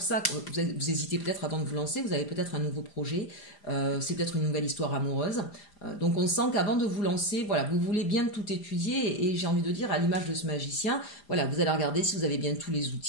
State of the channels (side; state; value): right; late; 5.0 ms